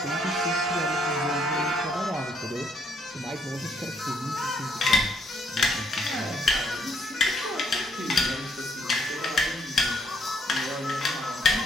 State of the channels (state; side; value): normal; both; correlation 0.69